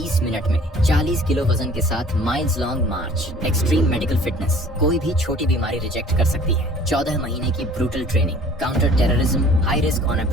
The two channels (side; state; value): both; normal; correlation 0.51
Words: मिनट में 40 किलो वजन के साथ माइल्स लॉन्ग मार्च, एक्सट्रीम मेडिकल फिटनेस, कोई भी छोटी बीमारी रिजेक्ट कर सकती है। 14 महीने की brutal training, counter terrorism, high risk on